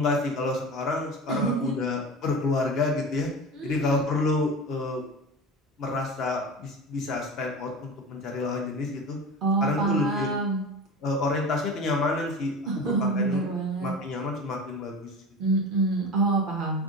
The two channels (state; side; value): normal; both; correlation 0.31